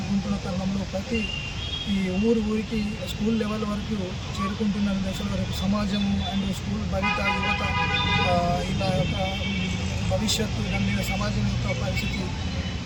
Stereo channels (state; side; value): identical; both; correlation 1.00